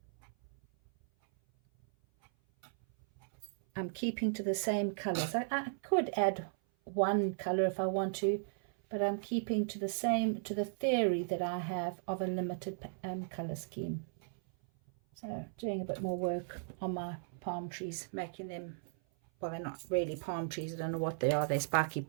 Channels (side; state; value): left; silent; 54 dB below the other